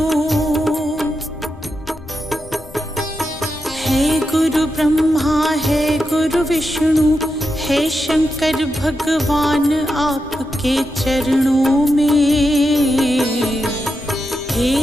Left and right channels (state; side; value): noise; left; rumble, 19 dB below the sound